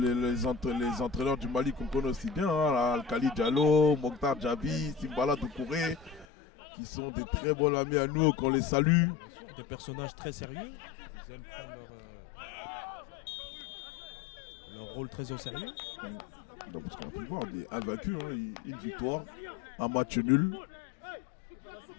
les entraîneurs du Mali qu'on connaît aussi bien, hein, Al-Khali Diallo, Mokhtar Djabi, Simbala Doucouré, qui sont des très bons amis à nous, qu'on les salue. Bien sûr, des personnages très sérieux. Ils aiment prendre leur rôle très au sérieux. Donc, parce qu'on peut voir, mais invaincus, hein, une victoire, un match nul.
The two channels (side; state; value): right; drops out; at 6.2 s